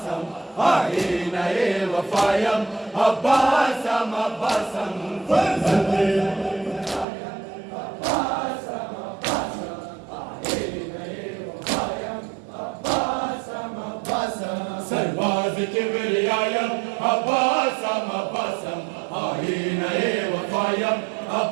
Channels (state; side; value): drops out; left; at 7.1 s